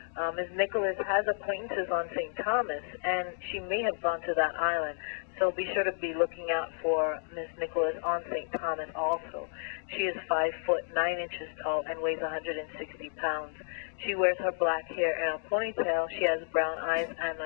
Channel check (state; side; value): silent; right; digital silence